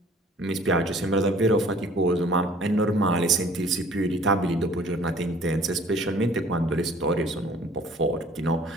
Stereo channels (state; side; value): normal; both; correlation 0.53